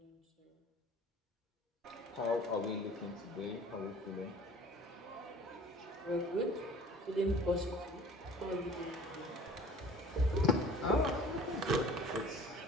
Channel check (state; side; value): normal; both; correlation 0.47